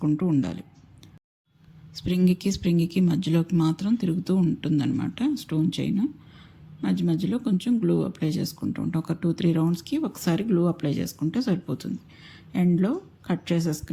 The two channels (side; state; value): both; identical; correlation 1.00